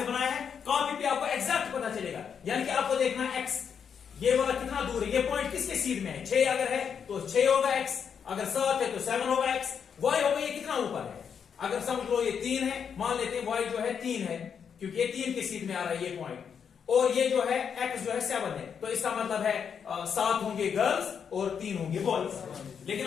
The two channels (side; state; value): right; quieter; 7.2 dB